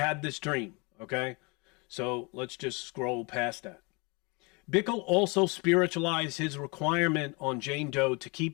this dream, okay? So let's just scroll past that. Bickle also spiritualized his requirement on Jane Doe to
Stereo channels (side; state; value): right; quieter; 29.4 dB